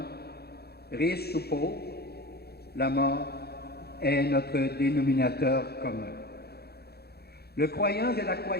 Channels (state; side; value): late; right; 0.46 ms